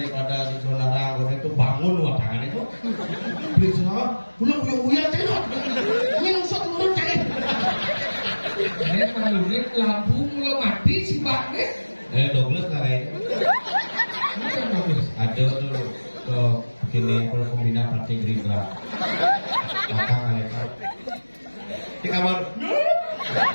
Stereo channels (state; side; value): inverted; both; correlation -1.00